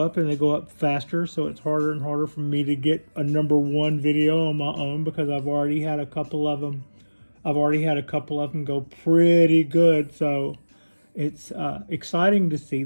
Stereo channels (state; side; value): inverted; both; correlation -1.00